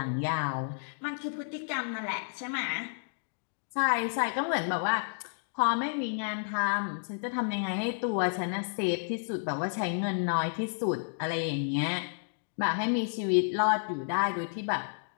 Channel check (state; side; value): silent; right; digital silence